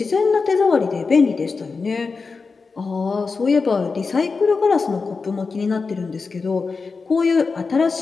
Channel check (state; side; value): quieter; right; 4.5 dB